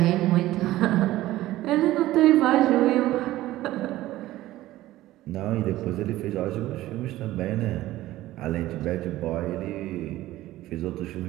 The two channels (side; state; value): left; quieter; 15.9 dB